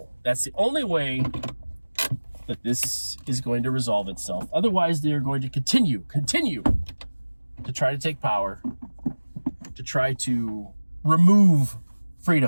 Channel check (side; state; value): both; inverted; correlation -1.00